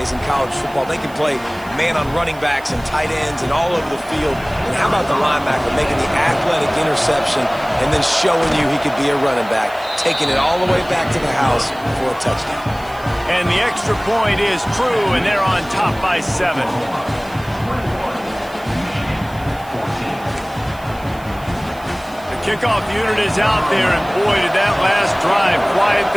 in college football. They can play man on running backs and tight ends and all over the field. And how about the linebacker making the athletic interception and then showing you he could be a running back, taking it all the way back to the house for a touchdown. And the extra point is true, and they're on top by 7. The kickoff unit is out there, and boy, did that last drive quiet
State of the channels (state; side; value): noise; right; hiss, 23 dB below the sound